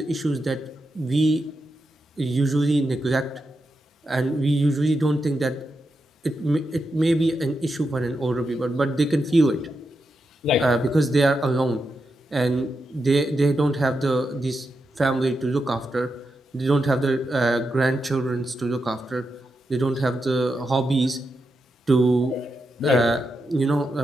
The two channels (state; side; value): normal; both; correlation 0.86